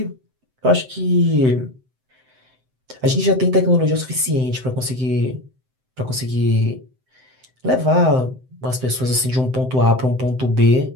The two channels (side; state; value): left; late; 7.8 ms